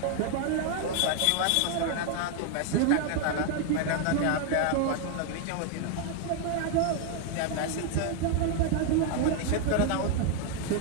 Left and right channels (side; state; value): both; different; correlation 0.00